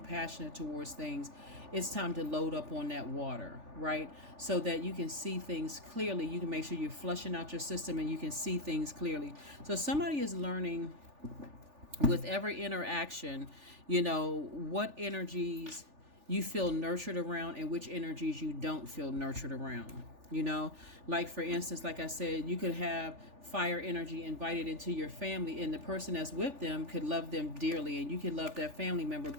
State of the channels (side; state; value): left; late; 3.4 ms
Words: towards things. It's time to load up on that water, right? So that you can see things clearly. You can make sure you're flushing out your system and you can see things clearly. So somebody is learning with every interaction, what energies you feel nurtured around and which energies you don't feel nurtured around. Like for instance, like I said, you could have fire energy invited into your family, and the person that's with them could love them dearly, and you can love that family member,